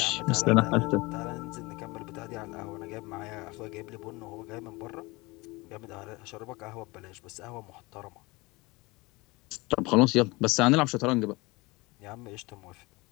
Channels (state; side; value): quieter; right; 23.7 dB